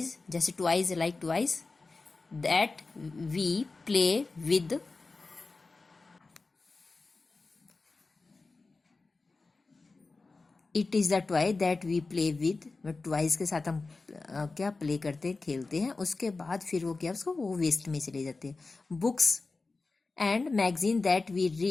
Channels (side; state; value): right; quieter; 3.8 dB